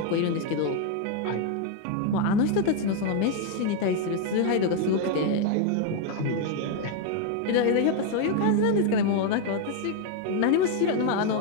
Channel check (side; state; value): both; different; correlation 0.01